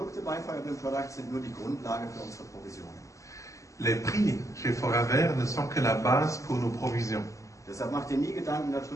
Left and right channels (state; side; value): late; right; 0.16 ms